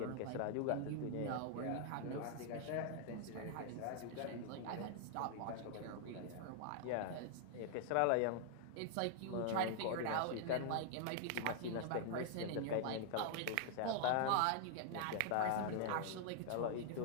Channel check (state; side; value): different; both; correlation -0.01